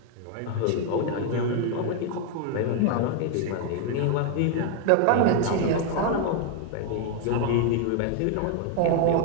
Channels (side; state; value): both; different; correlation 0.00